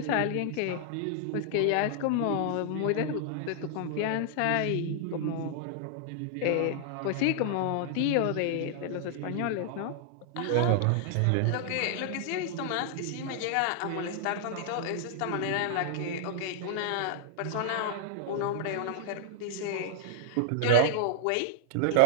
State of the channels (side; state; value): both; different; correlation -0.01